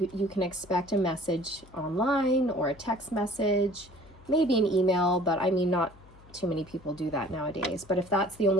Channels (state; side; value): noise; left; hum, 23 dB below the sound